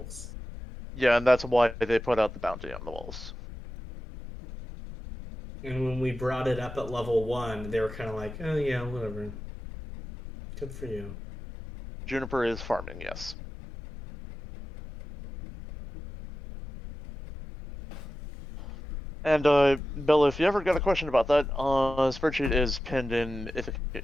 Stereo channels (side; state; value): both; normal; correlation 0.91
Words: Yeah, and that's why they put out the bounty on the wolves. And when we brought it up at level 1, they were kind of like, oh yeah, whatever. Good for you. Juniper is farming, yes. And Bella, if you ever got a question about that, spreadsheet is pinned in Ithaca